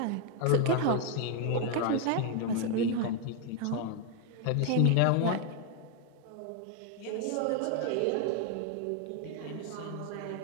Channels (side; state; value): both; different; correlation 0.00